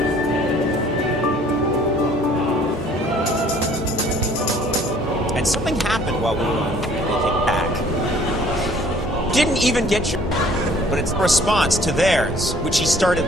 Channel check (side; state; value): both; normal; correlation 0.55